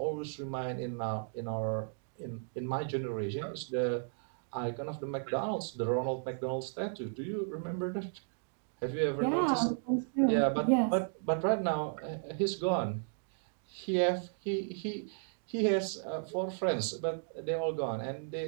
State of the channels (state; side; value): silent; left; digital silence